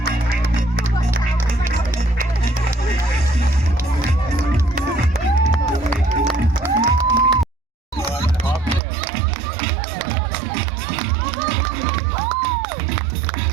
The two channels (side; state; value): left; drops out; at 8.8 s